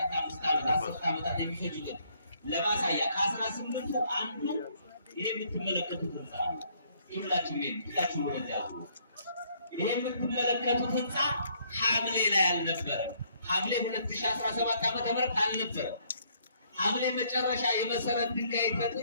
5 ዓመታት 10 ዓመታት የሚፈጅበት ለማሳያ ከ18ቱ አንዱ ይሄ የምትመለከቱት ህንፃ ሁላችሁ ወደዚያ ይሄ የምትመለከቱት ህንፃ ሐምሌ ላይ አልነበረም። ሐምሌ 2017 ዓመተ ምህረት አልነበረም። ሐምሌ መጨረሻ የመሰረት ድንጋይ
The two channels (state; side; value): inverted; both; correlation -0.67